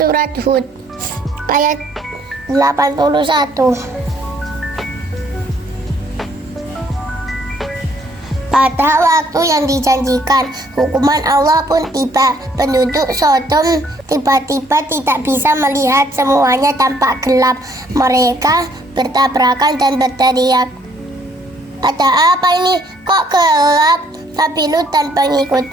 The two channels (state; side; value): normal; both; correlation 0.65